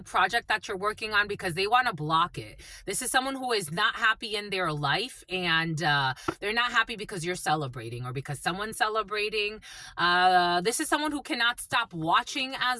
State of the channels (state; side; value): identical; both; correlation 1.00